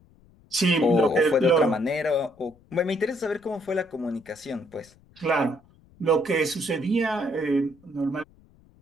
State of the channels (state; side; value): noise; left; rumble, 29 dB below the sound